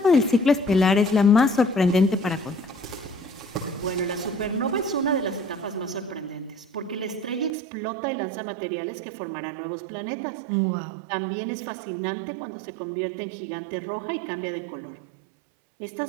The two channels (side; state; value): left; drops out; at 7.5 s